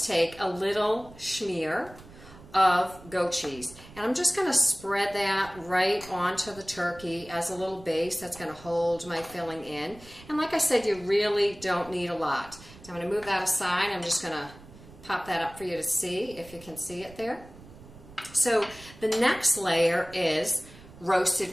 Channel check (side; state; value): right; noise; rumble, 20 dB below the sound